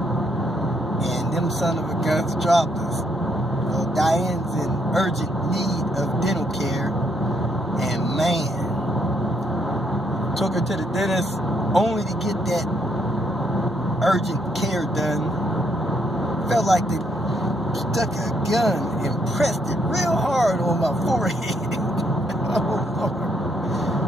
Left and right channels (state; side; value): normal; both; correlation 0.73